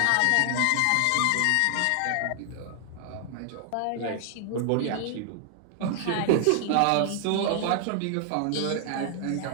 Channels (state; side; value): different; both; correlation 0.00